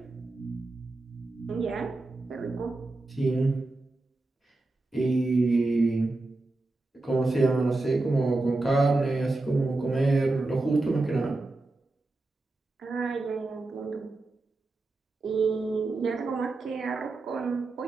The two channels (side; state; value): left; quieter; 3.1 dB